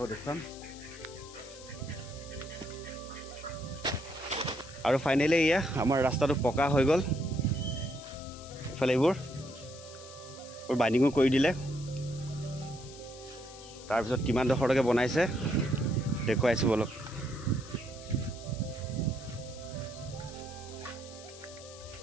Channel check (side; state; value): left; noise; hiss, 17 dB below the sound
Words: দেখুৱাম আৰু ফাইনেলি এয়া আমাৰ ৰাস্তাটো পকা হৈ গ'ল ইফালে এইবোৰ বাইণ্ডিঙো কৰি দিলে তাৰপিছত কিমান ডোখৰলৈকে বনাইছে দেখুৱাইছো বলক